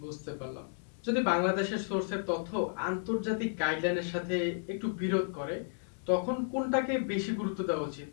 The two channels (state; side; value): silent; right; digital silence